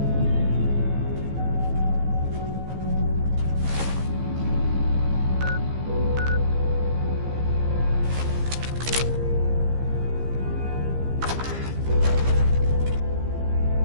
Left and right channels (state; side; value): late; left; 15 ms